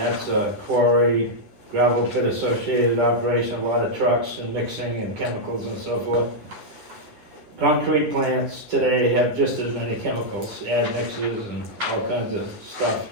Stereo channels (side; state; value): left; late; 10 ms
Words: a quarry, gravel pit associated operation, a lot of trucks and mixing and chemicals and so forth. Concrete plants today have just as many chemicals, admixes and all kinds of stuff